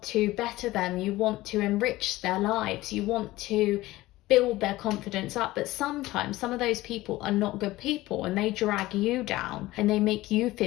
to better them. You want to enrich their lives. You want to build their confidence up. But sometimes some of those people are not good people, and they drag you down and they make you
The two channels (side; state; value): right; quieter; 17.8 dB